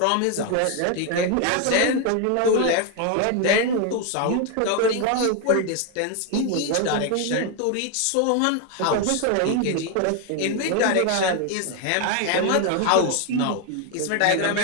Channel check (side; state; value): both; different; correlation 0.01